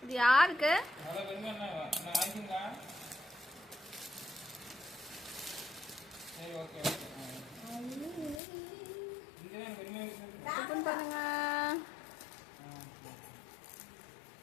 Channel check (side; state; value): right; drops out; at 8.4 s